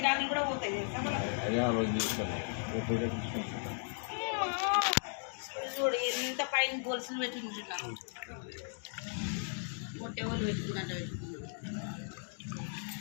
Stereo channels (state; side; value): silent; right; digital silence